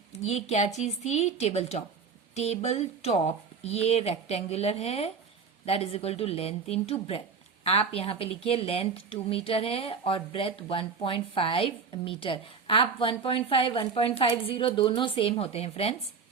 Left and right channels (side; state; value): left; quieter; 5.5 dB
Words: ये क्या चीज थी? Table top. टेबल टॉप ये रेक्टेंगुलर है, that is equal to length into breadth. आप यहां पे लिखिए लेंथ 2 मीटर है और ब्रेथ 1.5 मीटर। आप 1.5 1.50 दोनों सेम होते हैं फ्रेंड्स।